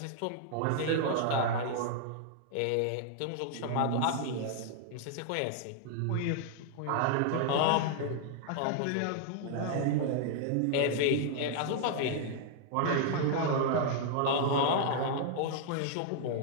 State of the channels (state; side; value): different; both; correlation -0.01